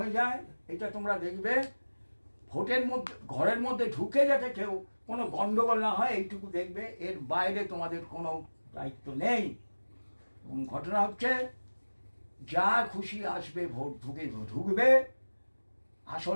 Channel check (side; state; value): both; inverted; correlation -1.00